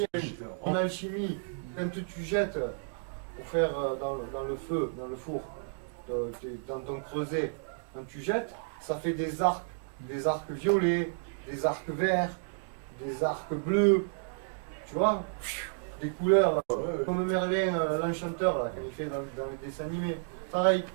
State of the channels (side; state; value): left; silent; digital silence